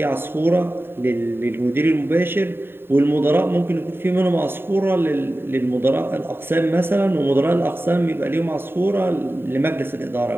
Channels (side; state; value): left; late; 0.11 ms